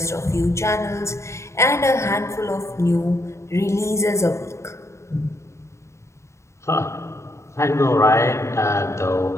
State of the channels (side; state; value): right; late; 0.14 ms